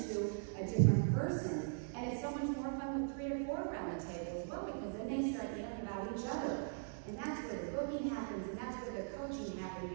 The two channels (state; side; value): silent; left; digital silence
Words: a different person. And it's so much more fun with 3 or 4 around the table as well, because then they start yelling about each other. And that's where the booking happens, and that's where the coaching